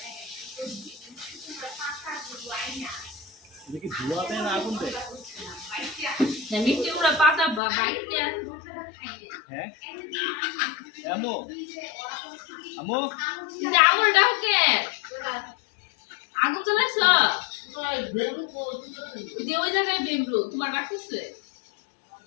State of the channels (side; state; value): right; drops out; at 7.6 s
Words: দেখি ধোয়া দেয় না আগুন দেয় না মিষ্টি গুড়া পাতা বাইতে হ্যাঁ আমো আমো আগুন দাও কে আগুন জ্বালাইছ দিয়ে ওই জায়গায় বেমরু তোমার রাখতেছে